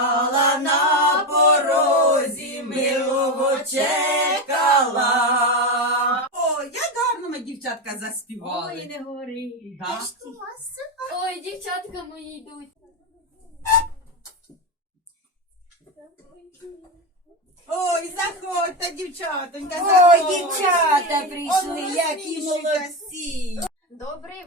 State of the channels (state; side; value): normal; both; correlation 0.13